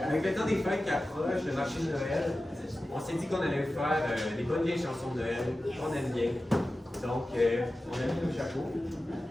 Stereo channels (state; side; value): normal; both; correlation 0.94